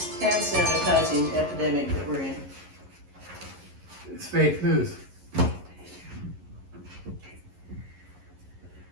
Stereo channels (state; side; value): late; left; 11 ms